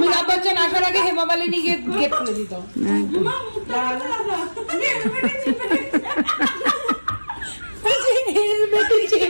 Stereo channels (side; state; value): both; inverted; correlation -1.00